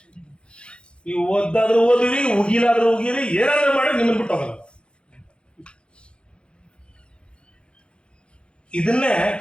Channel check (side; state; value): right; late; 0.055 ms